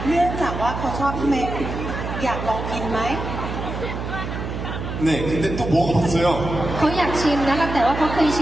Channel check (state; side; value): noise; right; hum, 6 dB below the sound